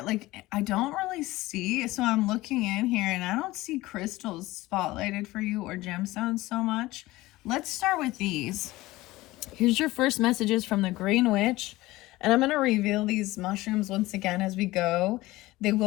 like I don't really see, so I'm looking in here and I don't see crystals spotlighted for you or gemstones so much. Let's start with these. Here's your first messages from the Green Witch, and I'm going to reveal these mushrooms once again as we go. They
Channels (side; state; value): right; quieter; 18.7 dB